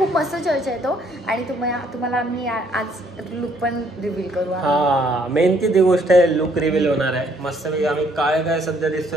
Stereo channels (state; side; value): normal; both; correlation 0.66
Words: मस्त चर्च आहे तो. आणि तुम्हाला आम्ही आज लुक पण रिव्हील करू. हा, मेन ती गोष्ट आहे, लुक रिव्हील होणार आहे. मस्त आम्ही काय सध्या